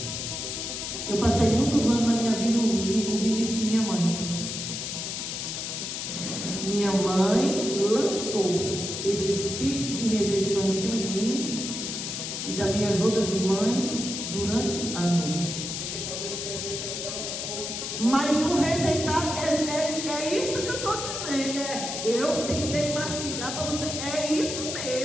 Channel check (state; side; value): noise; left; hiss, 5 dB below the sound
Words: Eu minha mãe lançou esse espírito de rejeição em cima de mim e das minhas outras irmãs durante anos. Mas o rejeitar é isso que eu estou dizendo. Eu tentei mastigar para você. É isso